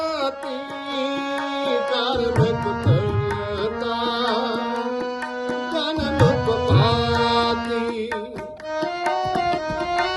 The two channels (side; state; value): both; identical; correlation 1.00